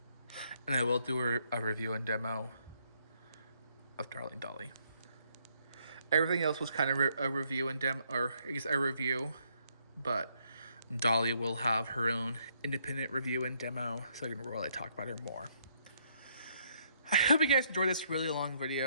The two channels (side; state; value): both; inverted; correlation -0.71